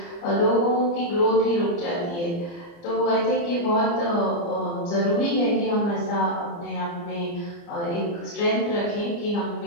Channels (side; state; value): right; late; 29 ms